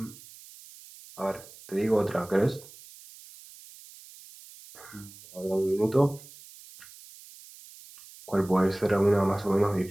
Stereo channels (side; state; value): right; noise; hiss, 20 dB below the sound